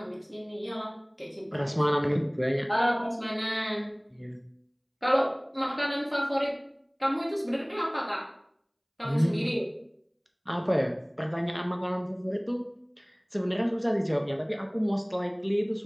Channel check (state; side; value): identical; both; correlation 1.00